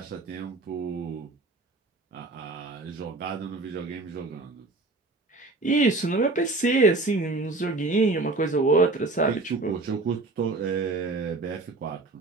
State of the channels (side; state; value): left; quieter; 3.3 dB